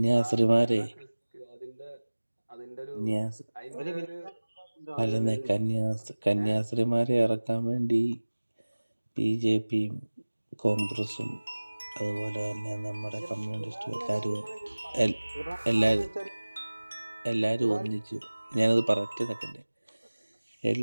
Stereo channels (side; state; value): both; inverted; correlation -1.00